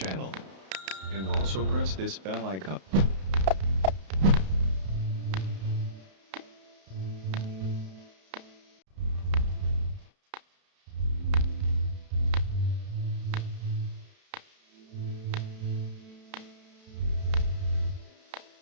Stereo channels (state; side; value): late; left; 32 ms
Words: And also press this bell icon.